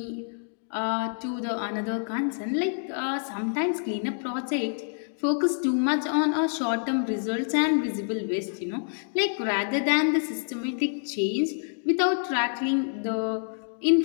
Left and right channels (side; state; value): right; silent; digital silence